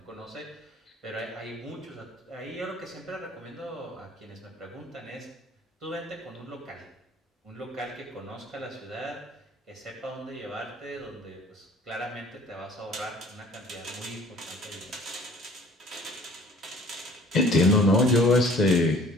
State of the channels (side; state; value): both; normal; correlation 0.52